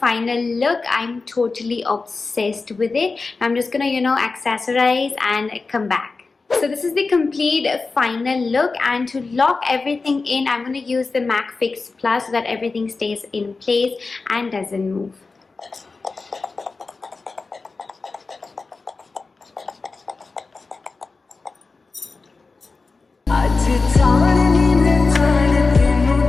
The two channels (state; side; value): quieter; right; 4.0 dB